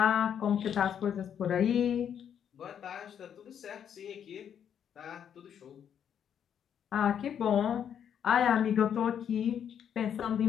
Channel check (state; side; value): quieter; right; 8.7 dB